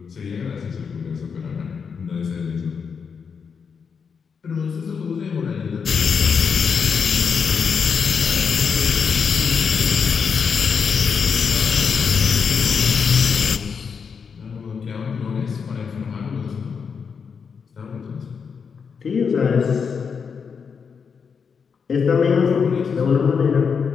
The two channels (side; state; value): right; quieter; 6.1 dB